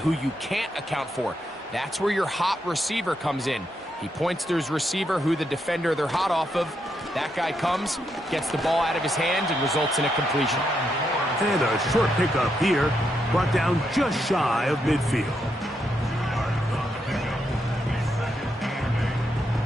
you can't account for. That's where your hot receiver comes in. He points to his receiver, who the defender they're hot off of. That guy comes, gets the ball out of his hands, and results in a completion. And a short pickup here, brought down just shy of midfield.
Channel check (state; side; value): normal; both; correlation 0.80